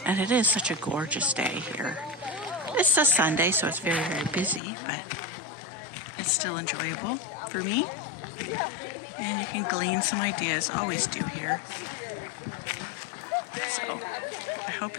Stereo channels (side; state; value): right; drops out; at 4.6 s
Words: and it is such a gorgeous day here. It's a Sunday, so it's very, very busy, but it's still enjoyable for me. And you can glean some ideas, always do here. So I hope